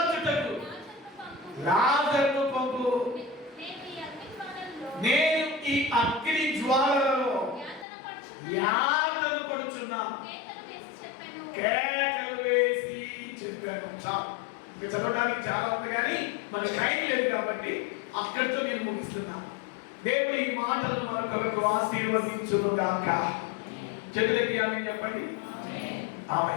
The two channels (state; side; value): drops out; right; at 7.9 s